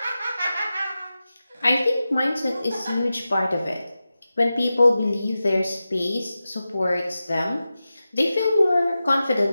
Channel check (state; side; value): inverted; both; correlation -0.93